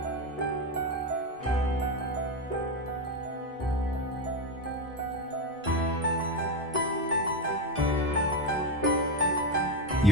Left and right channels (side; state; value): both; normal; correlation 0.13